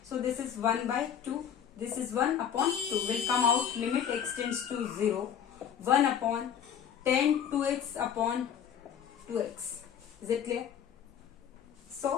So, this is 1 by 2. This is 1 upon 2 will come out. Limit x tends to 0. 1 upon 10 2x upon 2x. Is it clear?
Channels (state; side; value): quieter; right; 8.6 dB